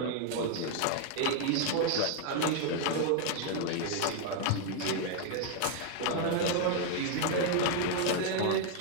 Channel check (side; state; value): both; different; correlation 0.00